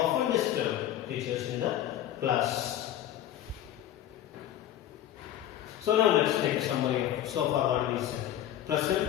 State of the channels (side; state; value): right; quieter; 12.0 dB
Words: disturbed teachers in the class. So now let's take a summary of so far what we said.